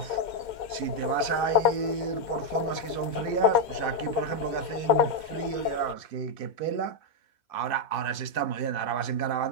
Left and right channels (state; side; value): late; right; 2.1 ms